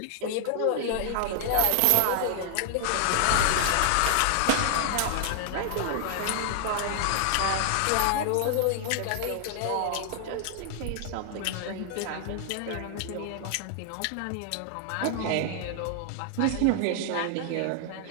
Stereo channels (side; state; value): both; different; correlation -0.01